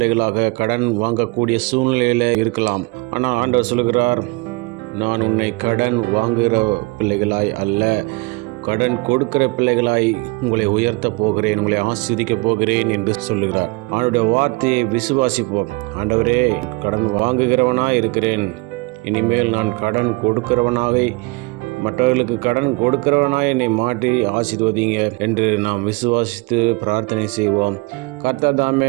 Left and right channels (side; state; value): left; quieter; 26.4 dB